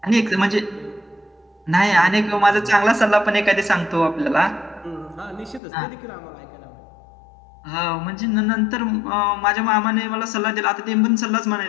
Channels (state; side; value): drops out; right; at 5.6 s